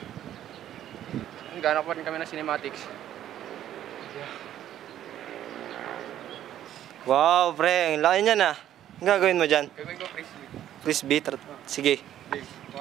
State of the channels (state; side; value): quieter; left; 11.6 dB